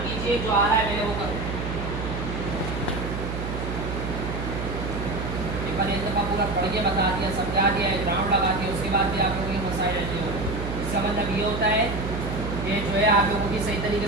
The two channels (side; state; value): right; noise; hum, 4 dB below the sound